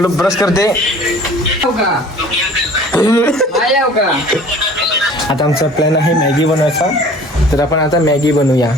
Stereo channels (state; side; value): normal; both; correlation 0.47